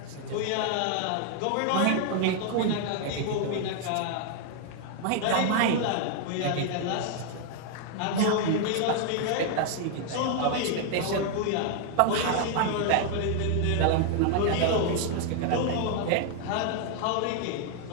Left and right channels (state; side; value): different; both; correlation 0.00